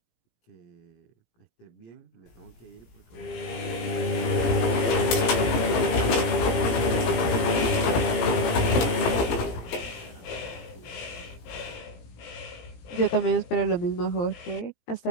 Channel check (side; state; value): right; late; 17 ms